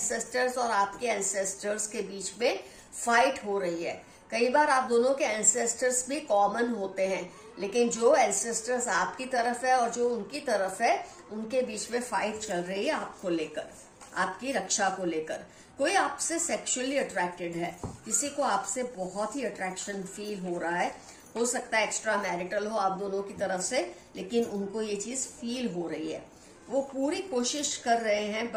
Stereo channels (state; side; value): identical; both; correlation 1.00